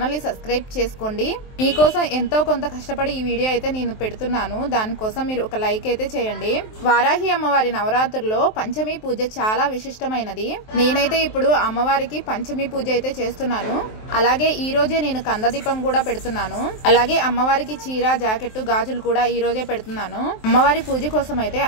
ని సబ్స్క్రైబ్ చేసుకోండి. మీకోసం ఎంతో కొంత కష్టపడి ఈ వీడియో అయితే నేను పెడుతున్నాను, దానికోసం మీరు ఒక లైక్ అయితే చేయండి. వారాహి అమ్మవారి నవరాత్రుల్లో పంచమి పూజ చాలా విశిష్టమైనది. నేనైతే ఇప్పుడు అమ్మవారికి పంచమి పూజ అయితే చేస్తున్నాను. అలాగే ఈ రోజే నేను కందదీపం కూడా పెడుతున్నాను. అలాగే అమ్మవారికి చీర, జాకెట్, గాజులు కూడా ఈ రోజే పెడుతున్నాను. అమ్మవారి పూజ కోసం అయితే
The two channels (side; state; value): right; late; 23 ms